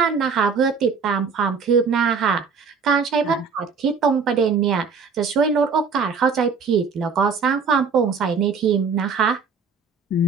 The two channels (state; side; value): quieter; left; 5.4 dB